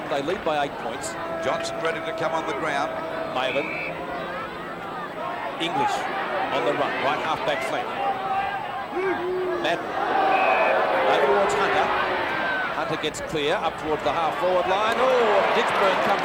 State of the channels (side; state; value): both; identical; correlation 1.00